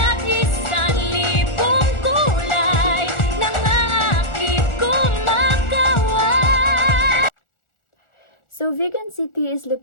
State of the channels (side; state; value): right; late; 1.4 ms